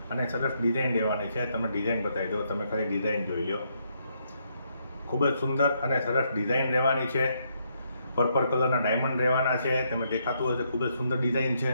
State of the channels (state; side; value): inverted; both; correlation -0.75